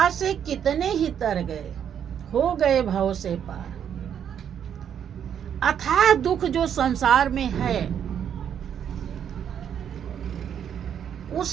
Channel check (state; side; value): quieter; left; 8.8 dB